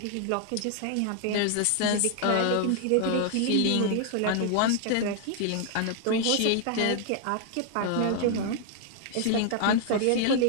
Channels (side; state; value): both; different; correlation 0.00